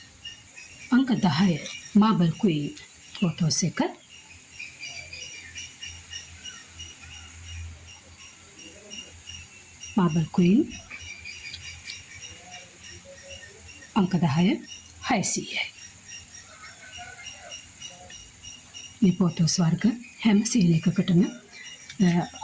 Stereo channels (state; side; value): identical; both; correlation 1.00